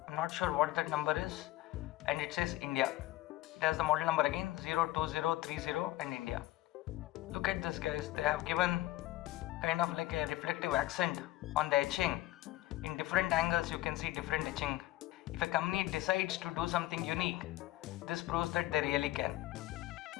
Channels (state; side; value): quieter; right; 16.9 dB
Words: I'm not sure what that number is. And it says India. It has the model number again, 02030 and India. Look at this, guys. They have given kind of like a reflective accent on the etching. In different angles you can see different etching. If a company decides to do something unique, this proves that they really can.